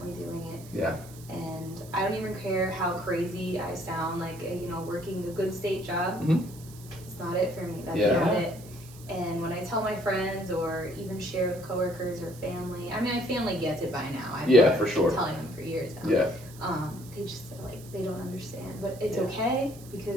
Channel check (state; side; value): noise; right; hiss, 20 dB below the sound